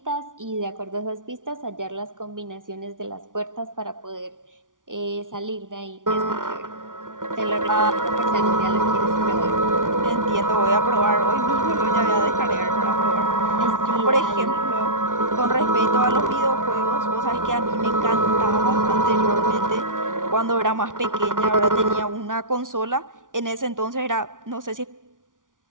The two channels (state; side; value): late; left; 0.88 ms